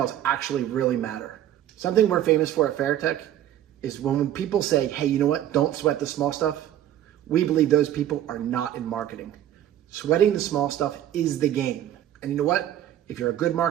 actually really matter. Something we're famous for at Veritech is when people say, hey, you know what? Don't sweat the small stuff. We believe those people are not in marketing. Sweating the small stuff is the game. And you know what? If you're a good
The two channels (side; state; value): left; quieter; 11.8 dB